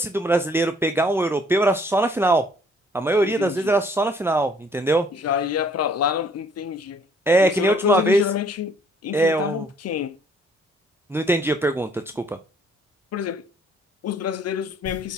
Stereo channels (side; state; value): both; normal; correlation 0.61